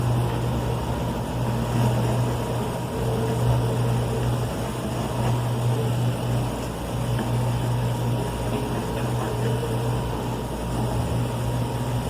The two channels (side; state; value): both; identical; correlation 1.00